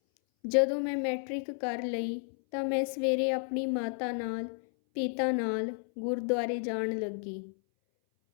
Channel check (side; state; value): right; silent; 57 dB below the other